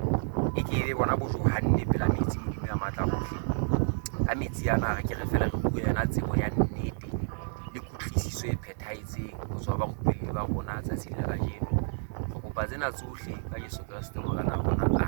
e ke be bona bojohanne pela metsi modimo ya matla hohle a metsi ana re ke re fela re bua yana tsebo ya nnete le kutlwisiso e phethahetseng ho tswa ba rupelli ba rona tsatsing la kajeno re kopa tsena tsohle ka Jesu Kriste morena.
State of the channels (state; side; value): silent; left; digital silence